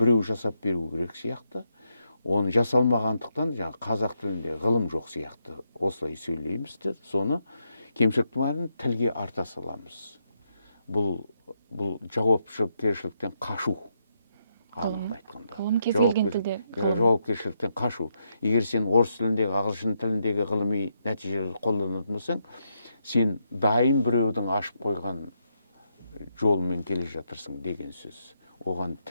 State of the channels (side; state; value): both; inverted; correlation -0.80